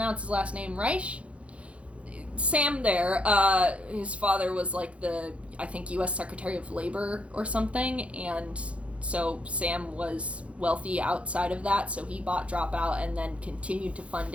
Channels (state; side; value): late; left; 0.062 ms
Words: his last name, Reich? Sam there, his father was like the, I think, U.S. Secretary of Labor or something, and so Sam was wealthy outside of that, so he bought Dropout and then continued to fund